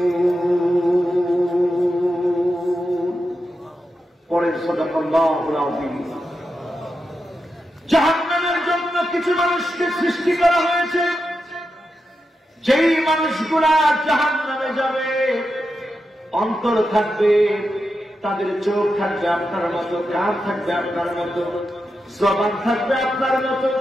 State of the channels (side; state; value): both; normal; correlation 0.88